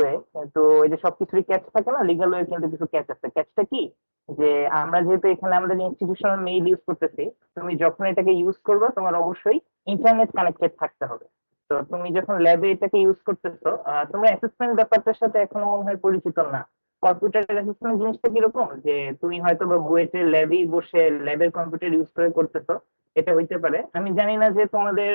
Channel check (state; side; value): inverted; both; correlation -1.00